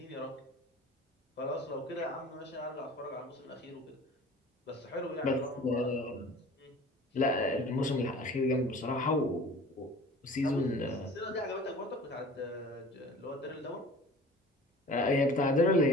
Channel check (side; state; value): both; normal; correlation 0.43